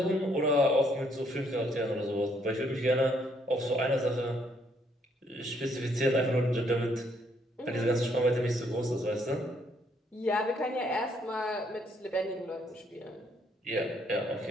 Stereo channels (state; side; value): normal; both; correlation 0.69